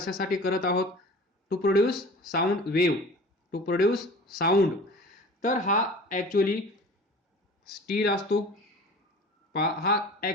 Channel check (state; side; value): normal; both; correlation 0.41